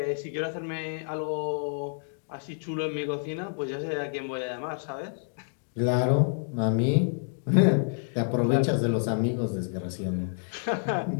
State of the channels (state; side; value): silent; right; digital silence